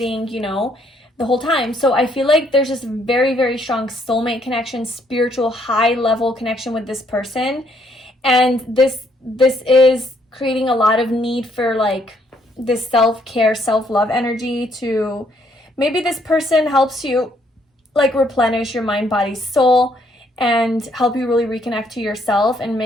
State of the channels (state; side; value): normal; both; correlation 0.69